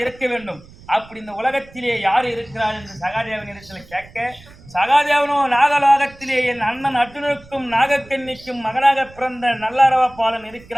இருக்க வேண்டும். அப்படி இந்த உலகத்திலே யார் இருக்கிறார் என்று சகாதேவனிடத்தில் கேட்க, சகாதேவனோ நாகலோகத்திலே என் அண்ணன் அர்ஜுனனுக்கும் நாகக்கன்னிக்கும் மகனாக பிறந்த நல்லறவப்பாளன்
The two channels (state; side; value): noise; right; rumble, 23 dB below the sound